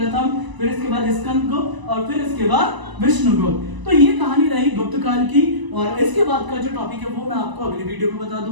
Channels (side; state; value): left; late; 1.0 ms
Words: फिर इसके बाद स्कंदगुप्त और फिर इसके बाद विष्णुगुप्त। तो ये कहानी रही गुप्त काल की, और इसके बाद का जो टॉपिक है वो मैं आपको अगली वीडियो में बता